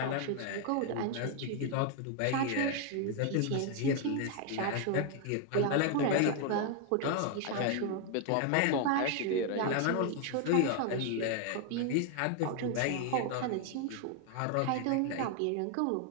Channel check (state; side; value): different; both; correlation 0.01